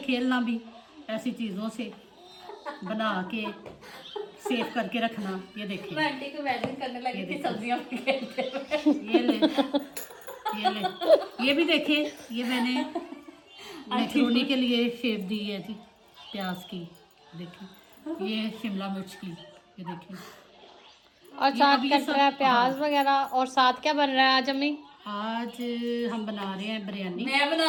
भी, ऐसी चीज़ों से बना के सेव करके रखना। ये देखिए, मैं आंटी को इमेजिन करने लगी थी सब्जियां खेलते ये ले, ये ले, ये भी देखे, ये मैंने मैक्रोनी के लिए शेप दी है थी प्याज की। देखिए, ये शिमला मिर्च की, ये देखिए। और साथ अब ये कट सब- रहा है प्याज वगैरह। और साथ क्या बन रहा है आज अम्मी? आज हम बना रहे हैं बिरयानी। मैं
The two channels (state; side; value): identical; both; correlation 1.00